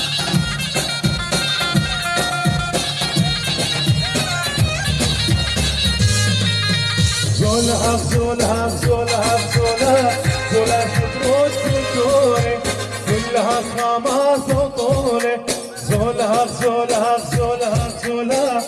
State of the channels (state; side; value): identical; both; correlation 1.00